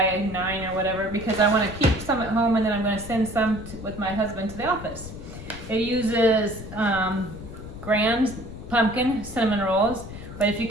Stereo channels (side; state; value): left; noise; rumble, 12 dB below the sound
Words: or whatever, because I wanna keep some at home and then I'm gonna send some with my husband to the office. It uses Grand pumpkin cinnamon rolls. But if you